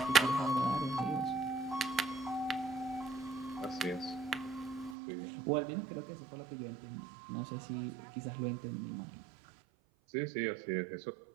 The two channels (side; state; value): left; drops out; at 5.0 s